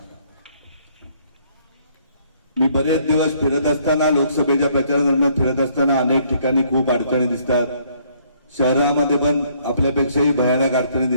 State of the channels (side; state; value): both; inverted; correlation -0.65